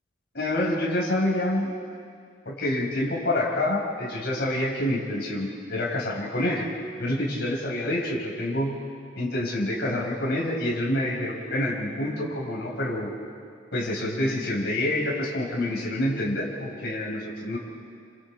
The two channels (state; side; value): normal; both; correlation 0.53